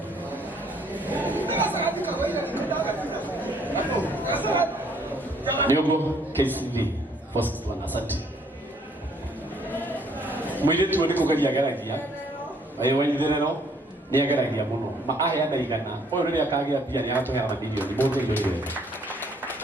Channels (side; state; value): both; normal; correlation 0.64